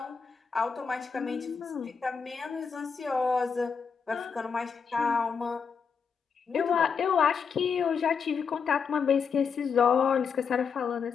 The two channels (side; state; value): right; quieter; 6.1 dB